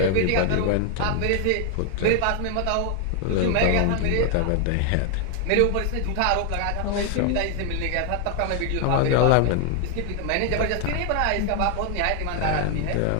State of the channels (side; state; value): both; different; correlation 0.00